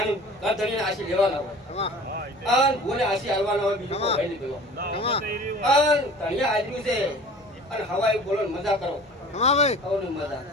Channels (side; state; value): both; normal; correlation 0.43